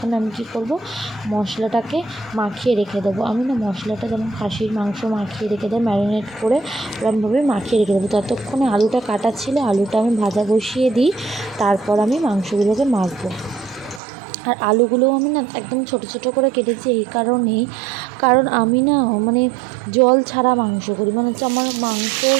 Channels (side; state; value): left; drops out; at 14.0 s